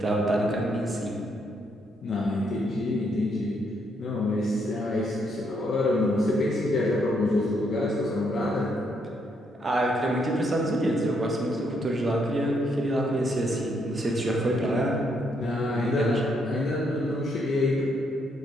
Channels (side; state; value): both; normal; correlation 0.75